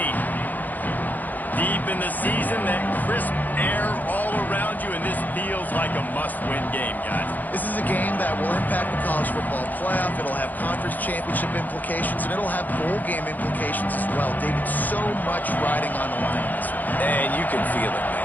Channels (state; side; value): late; right; 0.083 ms